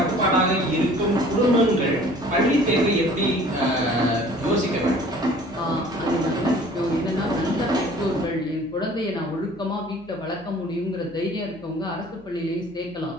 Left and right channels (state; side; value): noise; left; hum, 26 dB below the sound